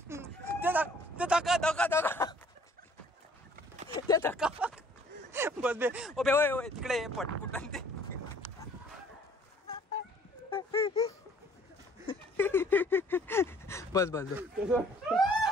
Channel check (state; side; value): normal; both; correlation 0.57